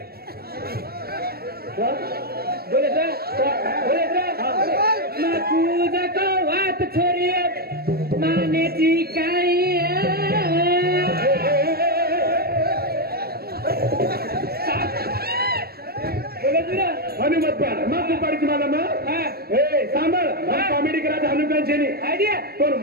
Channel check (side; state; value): left; late; 0.45 ms